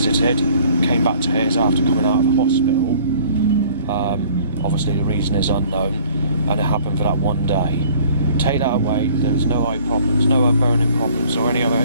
came back to his after coming out of hospital. Obviously the reason is unknown, and it happened for that one day. Take that away, there was no eye problems, no burning problems or any other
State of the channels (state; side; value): inverted; both; correlation -0.54